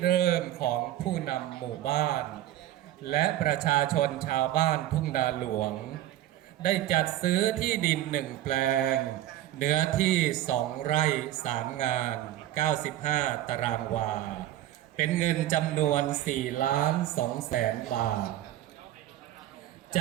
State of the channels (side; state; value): left; quieter; 13.5 dB